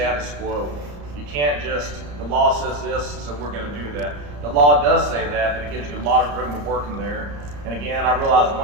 quo. You can't just, the law says this, so we're going to do that. The law does say that, but it gives you a lot of room to work in there. And again, I realize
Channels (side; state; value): left; late; 34 ms